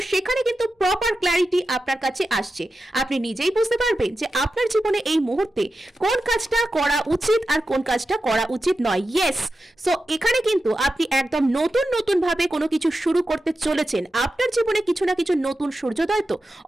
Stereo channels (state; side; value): normal; both; correlation 0.91